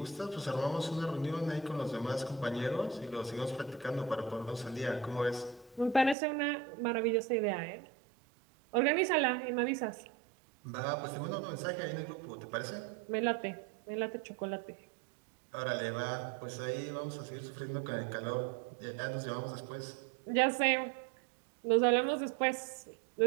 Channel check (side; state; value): left; drops out; at 6.2 s